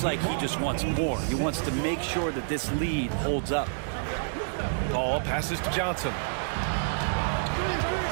like he just wants more. He wants to make sure that this lead holds up. Ball passes to Johnson.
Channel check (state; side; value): silent; left; digital silence